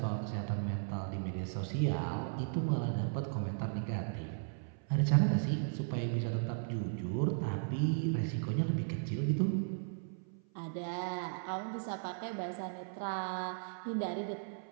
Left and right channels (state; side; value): silent; left; 54 dB below the other